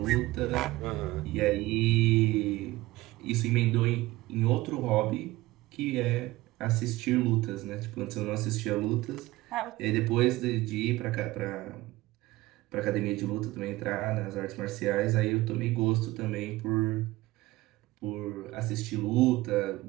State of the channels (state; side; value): quieter; left; 18.7 dB